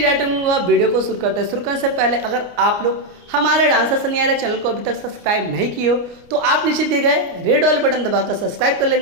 डायरेक्ट वीडियो को शुरू करते हैं। शुरू करने से पहले अगर आप लोग हमारे डांसर सनी आर्य चैनल को अभी तक सब्सक्राइब नहीं किए हो तो आप नीचे दिए गए रेड वाले बटन दबाकर सब्सक्राइब कर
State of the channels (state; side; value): late; left; 29 ms